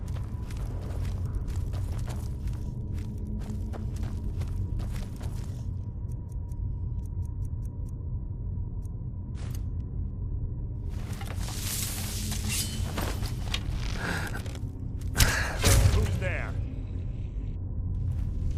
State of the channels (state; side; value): identical; both; correlation 1.00